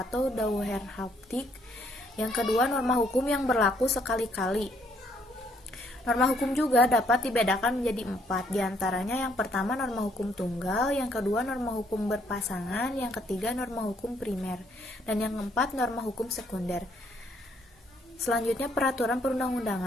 dauerhaftig. Yang kedua norma hukum yang berlaku sekali-kali. Norma hukum juga dapat dibedakan menjadi 4, diantaranya yang pertama norma hukum tunggal, yang kedua norma hukum berpasangan, yang ketiga norma hukum primer, dan yang keempat norma hukum sekunder. Selanjutnya peraturan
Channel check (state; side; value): normal; both; correlation 0.68